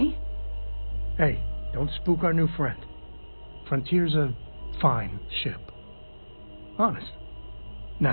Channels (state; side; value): inverted; both; correlation -1.00